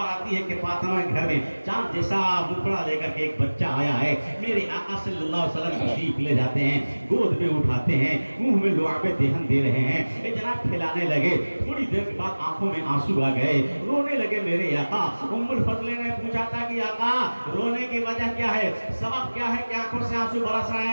آتی ہے کہ فاطمہ کے گھر میں چاند جیسا مکڑا لے کر کے ایک بچہ آیا ہے۔ میرے آقا صلی اللہ علیہ وسلم تشریف لے جاتے ہیں، گود میں اٹھاتے ہیں، منہ میں لعاب دہن دے رہے ہیں، اے جناب کھلانے لگے۔ تھوڑی دیر کے بعد آنکھوں میں آنسو آ گئے، رونے لگے میرے آقا۔ ام الفضل نے پوچھا تھا کہ آقا رونے کی وجہ کیا ہے، سبب کیا ہے کہ آنکھوں سے آنسو برس رہے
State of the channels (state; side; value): inverted; both; correlation -1.00